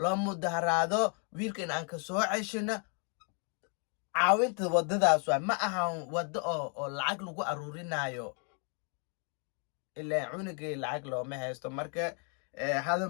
loo mudaharaado wiilkan aan ka soo ceshino caawinta wadadaas waa ma ahan wado oo lacag lagu aruurinayo ilaa cunugay lacag looma haysto marka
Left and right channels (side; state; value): right; quieter; 39.7 dB